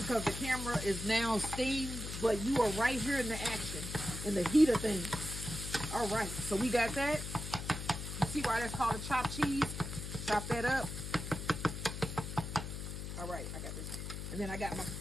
the camera is now steamed, but you are right here in the action, in the heat of things. All right, so we got that. You see why that's called a chopped cheese? Chop that up. All right, I got this one. And then I got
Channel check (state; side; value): noise; left; hum, 7 dB below the sound